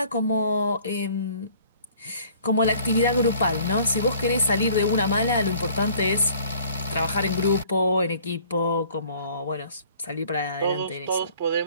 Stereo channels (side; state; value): both; inverted; correlation -0.54